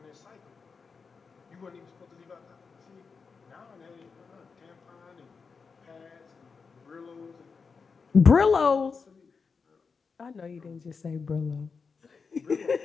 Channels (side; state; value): right; quieter; 5.2 dB